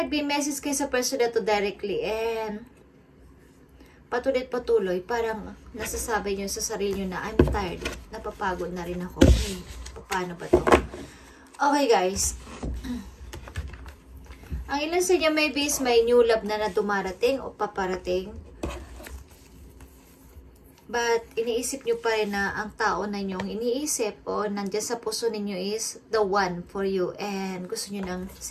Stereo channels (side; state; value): both; identical; correlation 1.00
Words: kayo sa person na to directly and patuloy, parang nasasabi nyo sa sarili nyo na I'm tired, napapagod na rin ako. Okay, paano ba to? Okay, guys. Ang ilan sa inyo maybe is may new love na dumarating o paparating. But iniisip nyo pa rin na ang tao na nyong iniisip o nandyan sa puso ninyo is the one for you. And gusto nyo ng